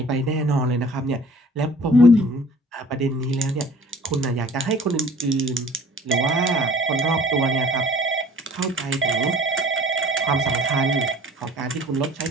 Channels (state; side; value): normal; both; correlation 0.49